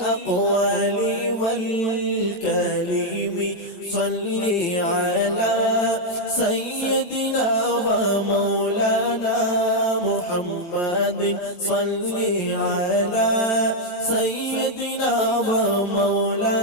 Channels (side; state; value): right; late; 14 ms